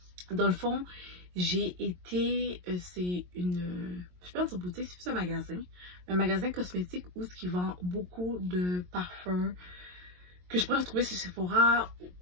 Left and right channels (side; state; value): left; late; 22 ms